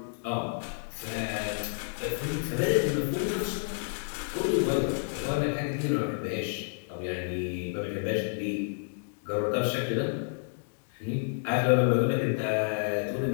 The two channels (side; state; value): right; silent; digital silence